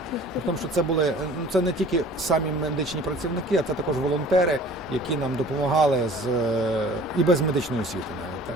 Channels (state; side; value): normal; both; correlation 0.47